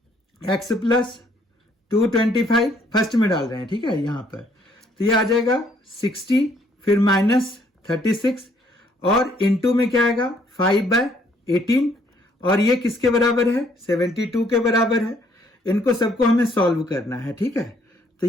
x प्लस 225 फर्स्ट में डाल रहे हैं। ठीक है, यहां पर तो ये आ जाएगा 60, फिर माइनस 36 और इनटू में क्या आएगा 5/18, और ये किसके बराबर है 72 के बराबर है। इनको सबको हमें सॉल्व करना है। ठीक है, तो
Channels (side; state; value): both; normal; correlation 0.66